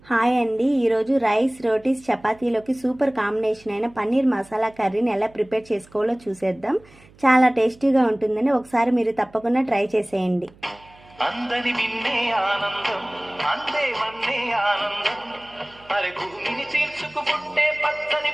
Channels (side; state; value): right; noise; hum, 26 dB below the sound